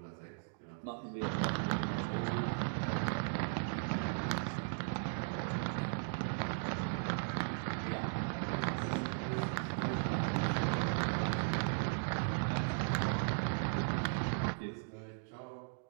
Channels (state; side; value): silent; left; digital silence